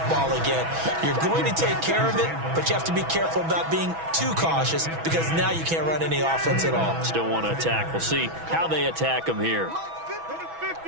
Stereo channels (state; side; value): late; left; 6.1 ms